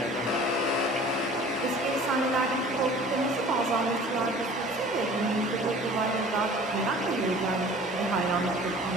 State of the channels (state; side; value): normal; both; correlation 0.46